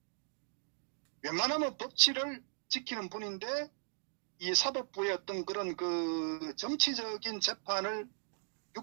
웬만하면 법치를 지키는 분인데 이 사법부의 어떤 그런 정치적인 재판을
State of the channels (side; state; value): left; silent; digital silence